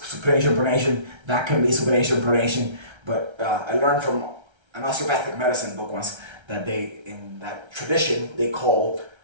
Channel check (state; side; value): late; left; 1.3 ms